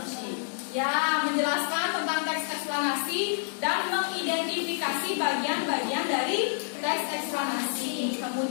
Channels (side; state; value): right; silent; 59 dB below the other